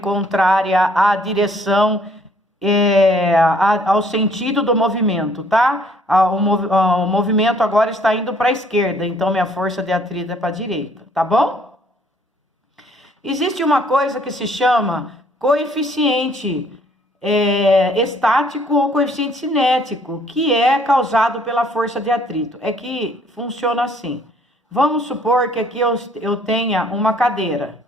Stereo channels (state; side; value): normal; both; correlation 0.62